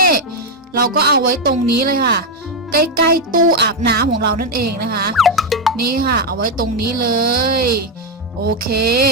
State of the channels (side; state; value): both; normal; correlation 0.04